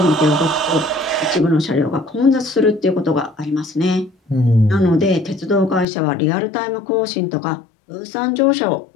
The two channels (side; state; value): right; drops out; at 5.9 s